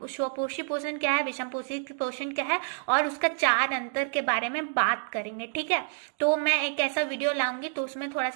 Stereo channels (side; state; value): left; silent; digital silence